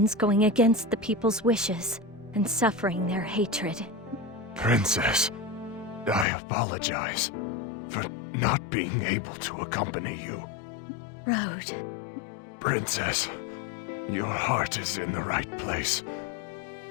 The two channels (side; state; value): right; drops out; at 6.2 s